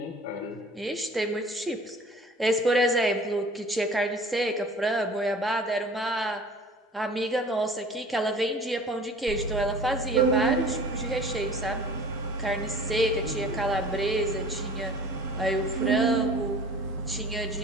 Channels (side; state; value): both; normal; correlation 0.45